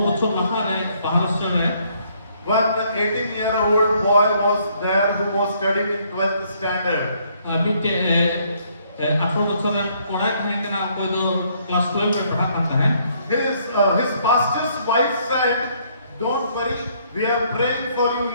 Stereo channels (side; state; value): both; inverted; correlation -0.67